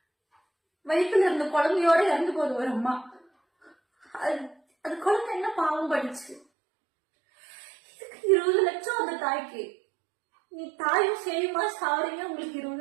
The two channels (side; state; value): left; drops out; at 6.4 s